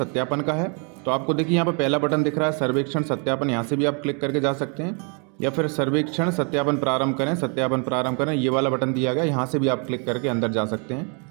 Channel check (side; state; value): left; quieter; 36.6 dB